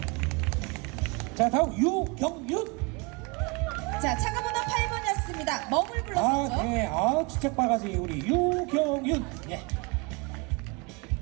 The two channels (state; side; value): quieter; left; 29.1 dB